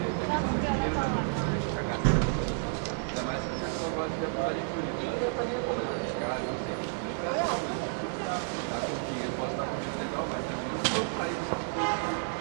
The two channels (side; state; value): left; silent; 57 dB below the other